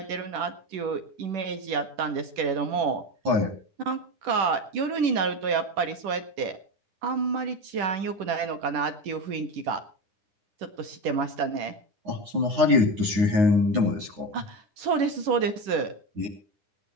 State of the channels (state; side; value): late; left; 10 ms